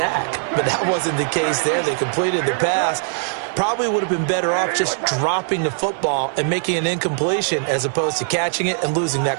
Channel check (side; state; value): left; silent; 62 dB below the other